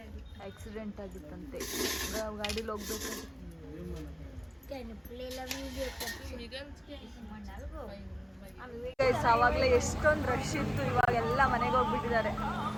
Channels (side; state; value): both; identical; correlation 1.00